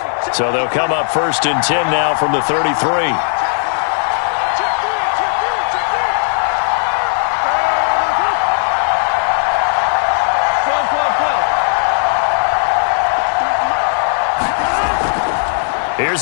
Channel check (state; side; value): silent; right; digital silence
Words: So they'll come up 1st and 10 now from the 33.